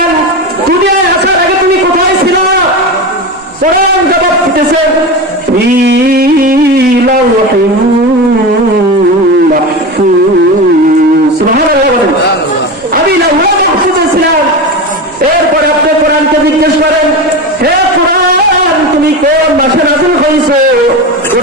দুনিয়ায় আসার আগে তুমি কোথায় ছিল? কোরআন জবাব দিতেছে, ফি লাওহিন মাহফুজ। সুবহানাল্লাহ। আমি লাওহে মাহফুজে ছিলাম। এরপরে আপনি কোরআনকে জিজ্ঞেস করেন, হে কোরআন তুমি কোন মাসে নাযিল হইছো?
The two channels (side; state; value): both; normal; correlation 0.23